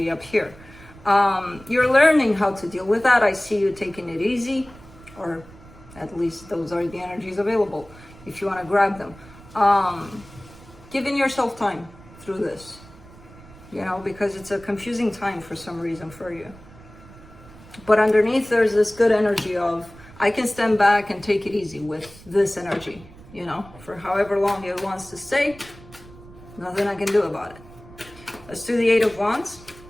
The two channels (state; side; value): noise; right; rumble, 21 dB below the sound